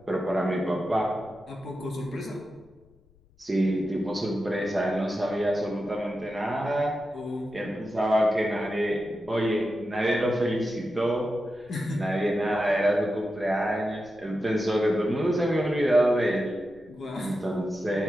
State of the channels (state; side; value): noise; left; rumble, 30 dB below the sound